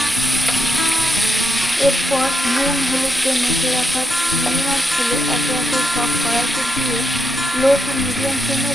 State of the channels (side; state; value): both; normal; correlation 0.84